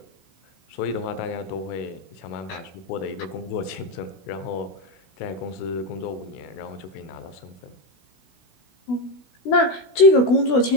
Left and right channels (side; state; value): right; late; 16 ms